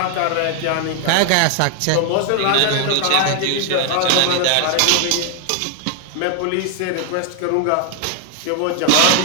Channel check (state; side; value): different; both; correlation 0.00